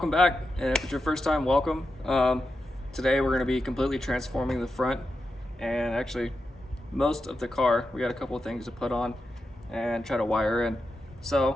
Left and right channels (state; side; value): normal; both; correlation 0.88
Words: back, and if it's your first time, welcome. Today we're going to be completely transforming the front and actually most of the car. We got a couple of things to put on and try to wire in.